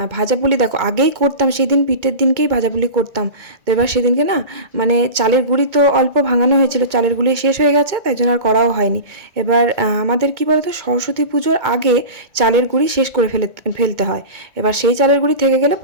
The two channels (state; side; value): late; left; 2.2 ms